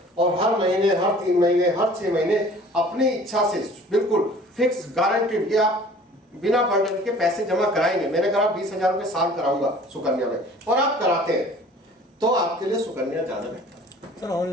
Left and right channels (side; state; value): both; normal; correlation 0.49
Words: और हर महीने, हर 3 महीने, हर 6 महीने अपनी इच्छा से बिल्कुल फिक्स गारंटीड कि आप बिना बर्डन के पैसे जमा कराएंगे, मैंने कहा 20,000 रुपए साल कराऊंगा सुकन्या में, और आप कराते हैं, तो आपके लिए सुकन्या ज्यादा बेहतर है। सर